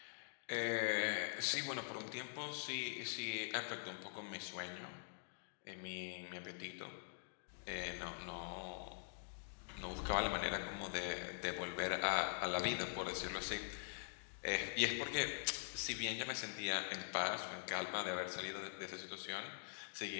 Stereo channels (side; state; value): right; silent; digital silence